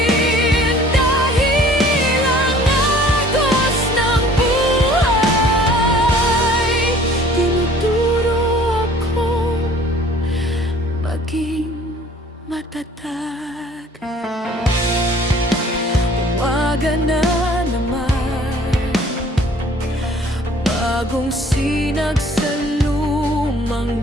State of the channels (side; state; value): both; normal; correlation 0.52